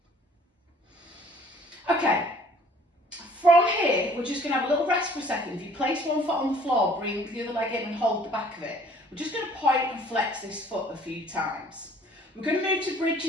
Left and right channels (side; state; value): both; normal; correlation 0.55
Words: Okay, from here, we're just going to have a little rest for a second. If you place one foot on the floor, bring the other leg in and hold the back of it. We're just going to point and flex this foot a few times. We're going to move to